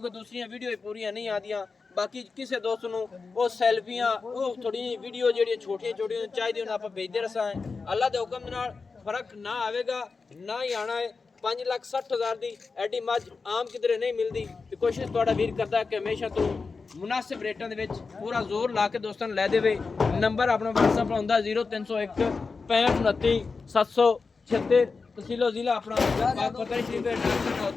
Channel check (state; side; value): quieter; right; 4.5 dB